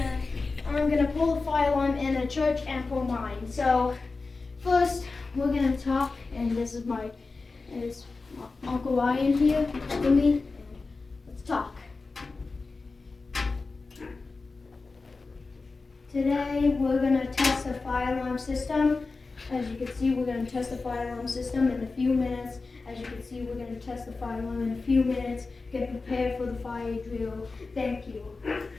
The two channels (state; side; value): quieter; right; 3.9 dB